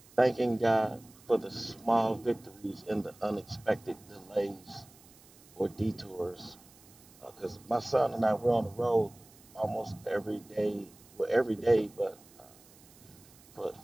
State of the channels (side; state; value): right; noise; hiss, 25 dB below the sound